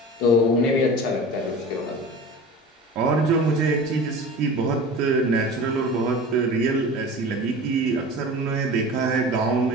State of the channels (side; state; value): both; normal; correlation 0.36